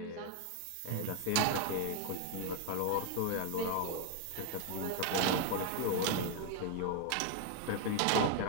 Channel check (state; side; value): different; both; correlation 0.01